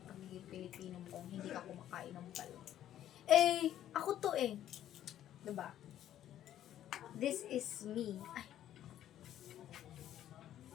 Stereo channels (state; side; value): quieter; right; 11.7 dB